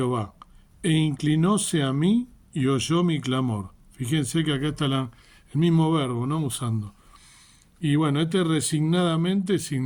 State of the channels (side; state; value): both; identical; correlation 1.00